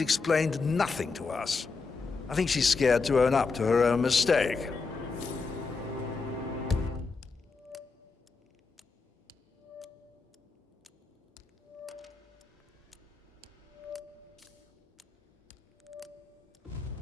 explained nothing to us. I think she's scared to own up to her own mistake.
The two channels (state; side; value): quieter; right; 4.4 dB